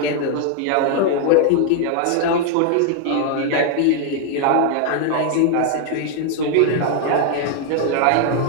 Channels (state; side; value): different; both; correlation 0.00